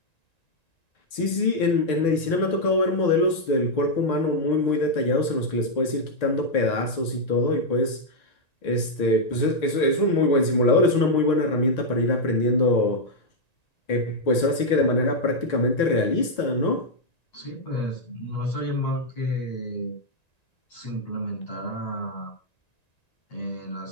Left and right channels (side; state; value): right; late; 1.9 ms